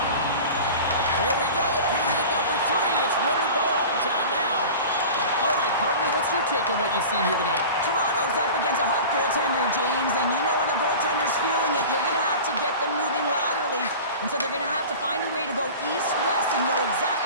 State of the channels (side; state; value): both; inverted; correlation -0.36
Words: Here we go. Period number 3. It's win or go home time now. All right, partner, what's your take on what you've seen here tonight? Toronto's up against a hot goaltender, James, and you know when a goaltender's feeling it, you're going to have to get them moving laterally. And so they're going to have to find a way to go east-west and know